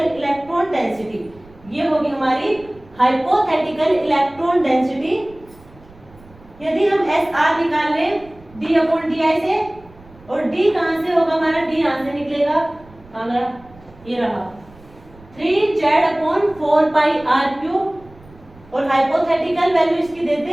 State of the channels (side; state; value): right; noise; rumble, 24 dB below the sound